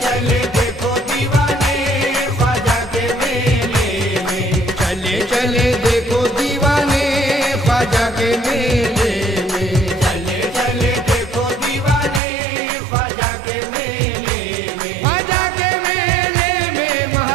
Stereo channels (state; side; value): drops out; left; at 12.2 s